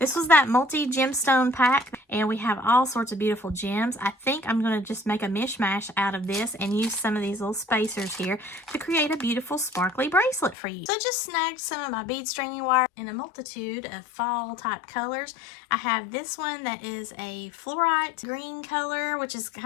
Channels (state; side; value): drops out; right; at 10.6 s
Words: was that multi-gemstone pack, and we have all sorts of beautiful gems. I think I'm going to just make a mishmash out of this and use some of these little spacers here to create a beautiful sparkly bracelet for you. So I just snagged some of my bead stringing wire in a multitude of fall type colors. I have this one that is a fluorite green color, which is